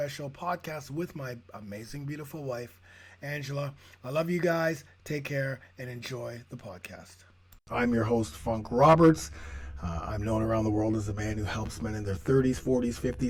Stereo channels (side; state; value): both; identical; correlation 1.00